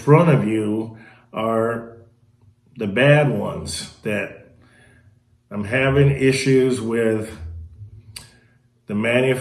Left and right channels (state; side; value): identical; both; correlation 1.00